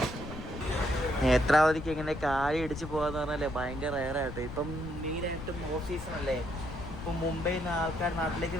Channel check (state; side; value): noise; left; rumble, 9 dB below the sound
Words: നേത്രാവതിക്ക് എങ്ങനെ കാലി ഇടിച്ച് പോകാന്ന് പറഞ്ഞാലേ ഭയങ്കര റയറായിട്ട്. ഇപ്പം മെയിനായിട്ടും ഓഫ് സീസൺ അല്ലേ. ഇപ്പം മുംബൈയിൽ നിന്ന് ആൾക്കാർ നാട്ടിലേക്ക്